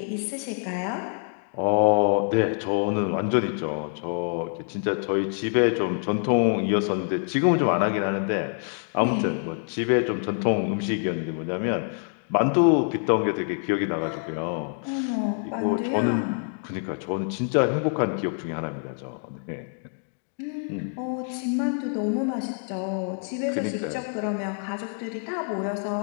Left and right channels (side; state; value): right; silent; 56 dB below the other